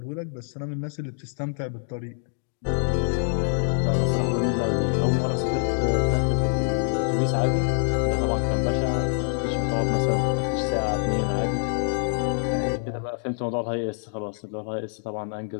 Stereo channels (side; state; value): right; silent; 61 dB below the other